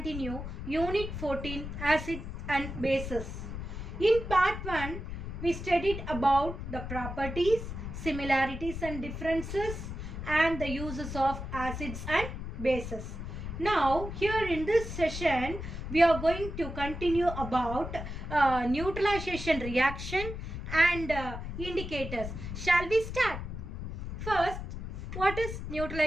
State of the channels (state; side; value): noise; left; rumble, 7 dB below the sound